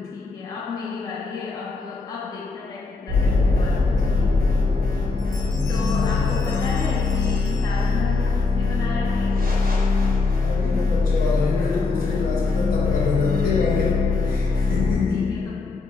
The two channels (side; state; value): right; quieter; 3.8 dB